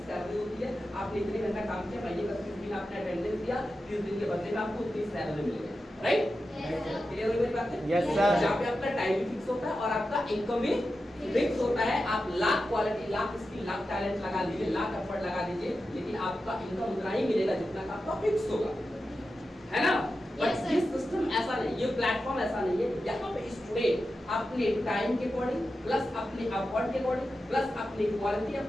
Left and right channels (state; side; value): normal; both; correlation 0.91